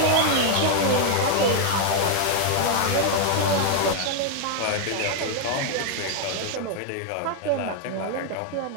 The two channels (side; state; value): both; different; correlation 0.00